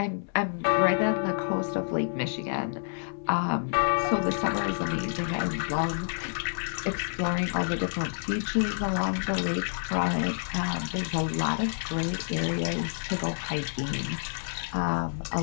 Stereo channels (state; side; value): silent; right; 59 dB below the other